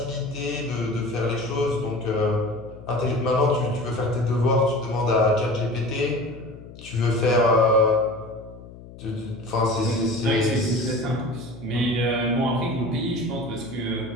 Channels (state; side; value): noise; left; hum, 17 dB below the sound